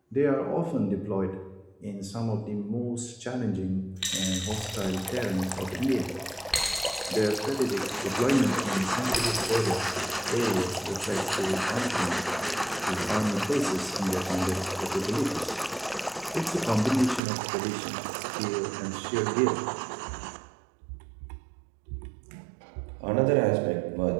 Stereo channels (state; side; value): drops out; left; at 17.2 s